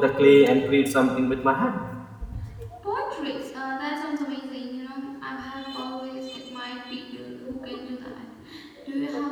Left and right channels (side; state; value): both; identical; correlation 1.00